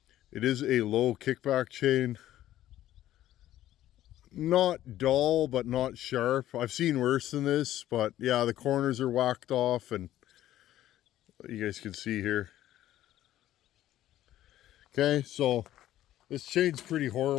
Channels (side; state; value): right; quieter; 13.3 dB